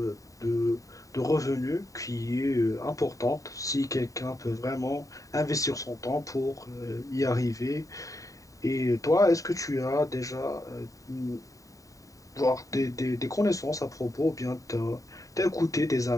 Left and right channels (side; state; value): right; late; 0.16 ms